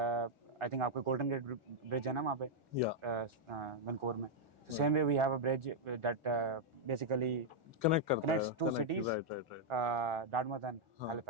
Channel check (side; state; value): left; late; 1.4 ms